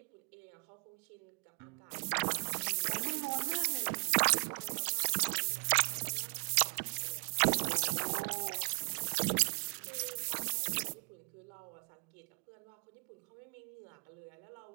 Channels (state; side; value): quieter; left; 36.8 dB